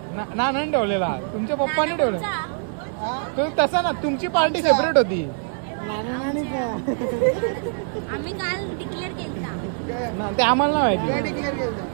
ना ठेवलेला तुमच्या पप्पानी ठेवला तो तसा ना तुमची पार्टी सेपरेट होती ते आम्हाला नाही माहिती.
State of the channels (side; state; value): left; silent; 63 dB below the other